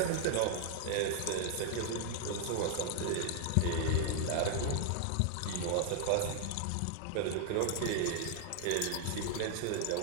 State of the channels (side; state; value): both; different; correlation 0.00